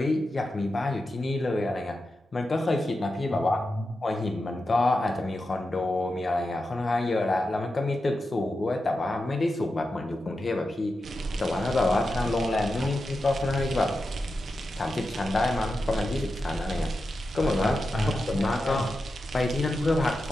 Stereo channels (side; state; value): both; normal; correlation 0.90